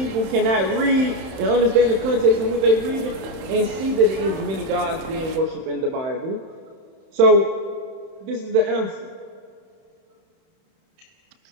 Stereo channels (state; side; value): late; left; 31 ms